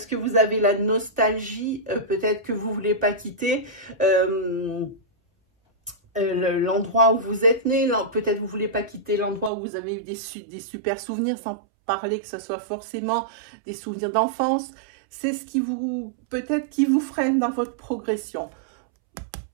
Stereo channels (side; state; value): left; drops out; at 9.5 s